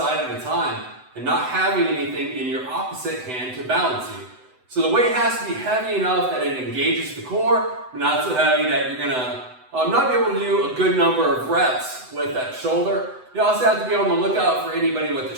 at a time and not having anything in your opposite hand to balance you. So the weight has to be heavy enough that it engages the core, but not so heavy that you're gonna not be able to do a good number of reps with that shoulder. You also have to be on the lookout for anybody with a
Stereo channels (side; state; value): left; late; 7.9 ms